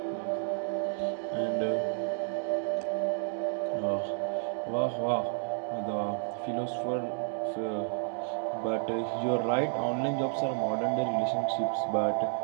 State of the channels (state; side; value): silent; left; digital silence